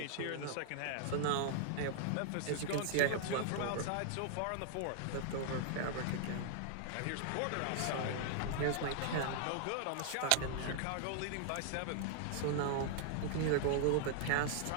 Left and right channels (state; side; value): different; both; correlation -0.01